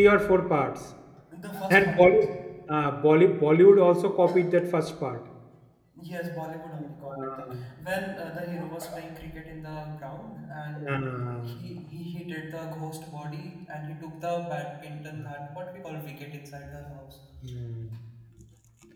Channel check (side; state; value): both; identical; correlation 1.00